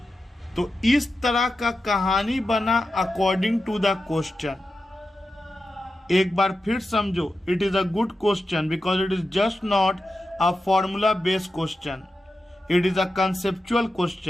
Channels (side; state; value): both; normal; correlation 0.91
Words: तो इस तरह का कहानी बना अकॉर्डिंग टू द क्वेश्चन. एक बार फिर समझो, it is a good question because it is just not a formula based question, it is a conceptual